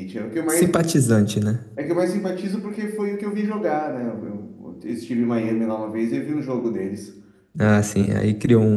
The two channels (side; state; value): both; identical; correlation 1.00